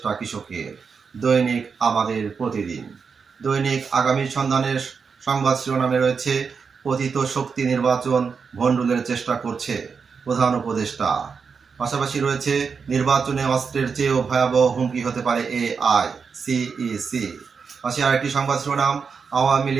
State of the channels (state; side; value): quieter; left; 5.6 dB